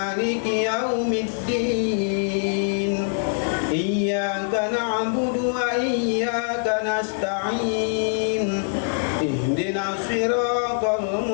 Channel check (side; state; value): right; silent; digital silence